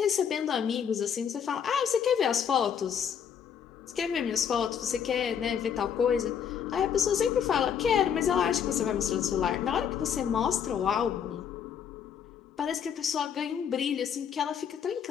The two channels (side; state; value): right; quieter; 8.0 dB